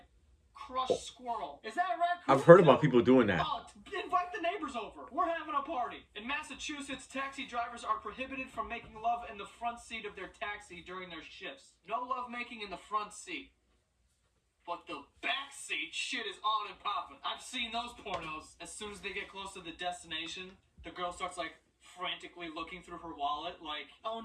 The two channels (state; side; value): identical; both; correlation 1.00